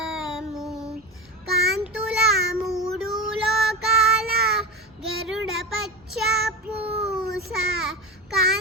కాంతుల మూడు లోకాల గరుడ పచ్చ పూస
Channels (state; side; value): normal; both; correlation 0.23